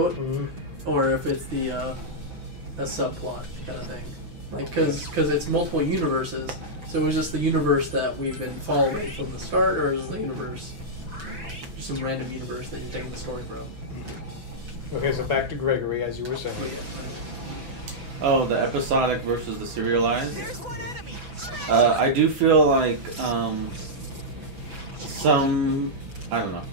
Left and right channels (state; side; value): late; left; 6.0 ms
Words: or if it's the a subplot kind of thing. Like, because it's multiple universes, so is this the universe that we've been following from the start, or is the universe just some random universe that you're taking the story from? Okay, so back to Gregory, as you were saying. Oh, the episodic versus the serialized? I do feel like I don't know.